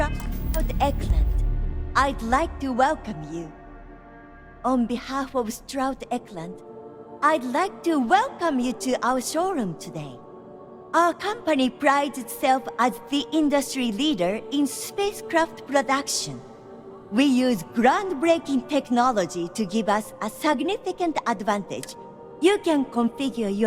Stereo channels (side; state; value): both; identical; correlation 1.00